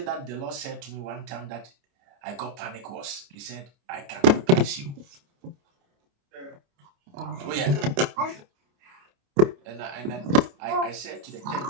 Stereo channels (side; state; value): left; late; 29 ms